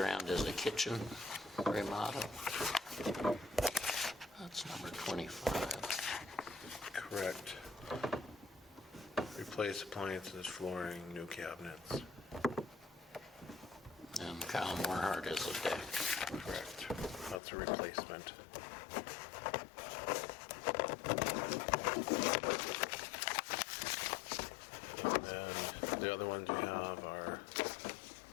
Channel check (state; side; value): drops out; right; at 17.4 s